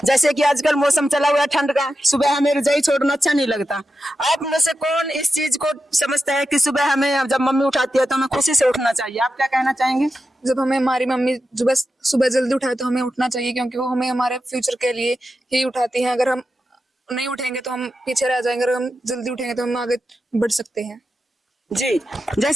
जैसे कि आजकल मौसम चला हुआ है ठंड का, सुबह हमें रजाई छोड़ना अच्छा नहीं लगता। आप में से कौन इस चीज को समझता है कि सुबह हमें जब मम्मी उठाती है तो हमें खुशी से उठना चाहिए? आप क्या कहना चाहेंगे? जब हमें हमारी मम्मी सुबह जल्दी उठाए तो हमें उठना चाहिए, क्योंकि वो हमें हमारे फ्यूचर के लिए ही उठाती हैं। अगर हम नहीं उठेंगे तो हम पीछे रह जाएंगे, अगर हम जल्दी उठेंगे तो हम आगे बढ़ सकते हैं। जी,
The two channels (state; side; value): normal; both; correlation 0.90